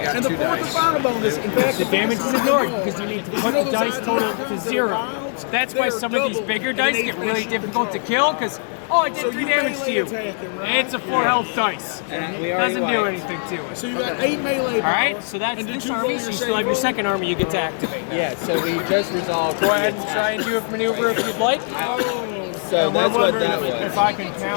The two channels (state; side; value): silent; right; 56 dB below the other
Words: got 2 dice. And the fourth and final bonus, in fact, The damage is ignored because you need to put the dice total to 0. That's why some of these bigger dice get really difficult to kill because, oh, I did 3 damage to you. And it's a 4 health dice. Doesn't do anything to it. So you got 8 melee. Alright, so that's this army, so you still have your second army you get to activate. Yeah, so we just resolved. Go ahead and try and do a maneuver if you'd like. So that's what that was. If I can